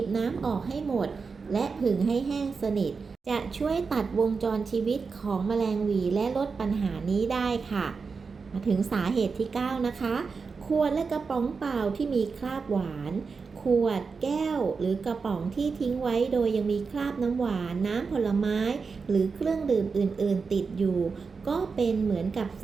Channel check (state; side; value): quieter; left; 5.0 dB